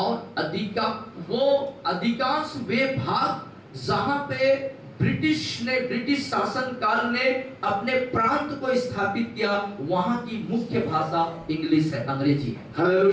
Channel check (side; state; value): both; identical; correlation 1.00